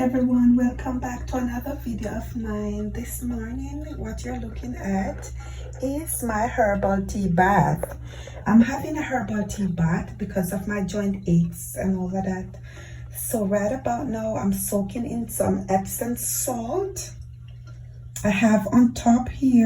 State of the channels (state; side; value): identical; both; correlation 1.00